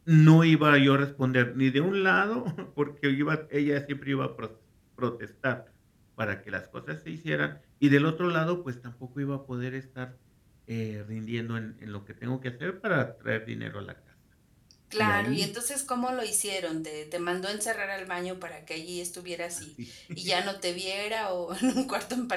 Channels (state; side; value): identical; both; correlation 1.00